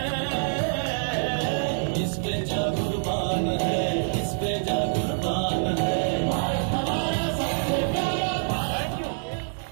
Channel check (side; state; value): left; silent; digital silence